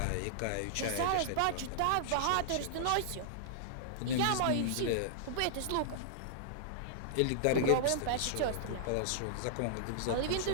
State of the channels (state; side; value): different; both; correlation -0.01